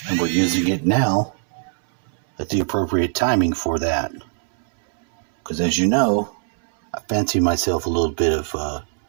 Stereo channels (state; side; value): silent; left; 64 dB below the other